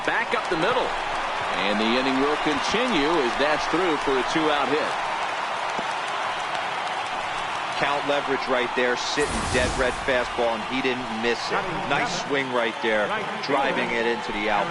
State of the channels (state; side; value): identical; both; correlation 1.00